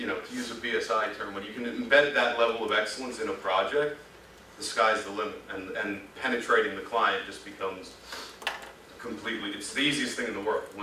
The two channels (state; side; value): identical; both; correlation 1.00